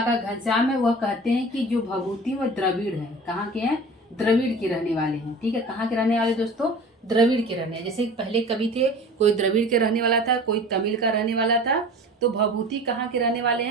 घनश्याम है, वह कहते हैं कि जो भभूति वह द्रविड़ है। कहाँ के हैं? द्रविड़ के रहने वाले हैं। ठीक है, कहाँ के रहने वाले दोस्तों? द्रविड़ के रहने। जैसे पहले कवि थे, कोई द्रविड़ के रहने वाला था, कोई तमिल का रहने वाला था। तो भभूति कहाँ के रहने वाले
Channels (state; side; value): normal; both; correlation 0.39